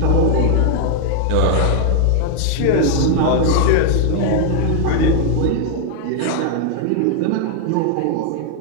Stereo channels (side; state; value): both; different; correlation 0.00